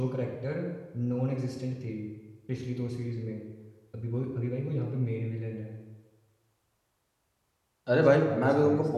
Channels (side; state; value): both; identical; correlation 1.00